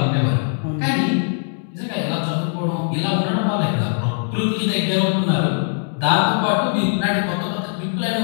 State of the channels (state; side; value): silent; right; digital silence